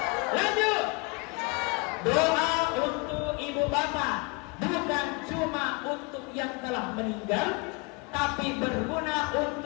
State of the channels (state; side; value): quieter; right; 28.6 dB